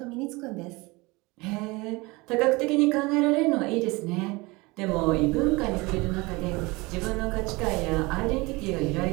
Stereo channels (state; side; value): quieter; left; 24.0 dB